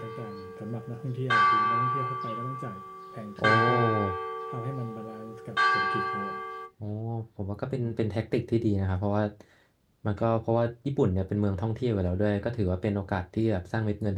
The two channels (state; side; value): identical; both; correlation 1.00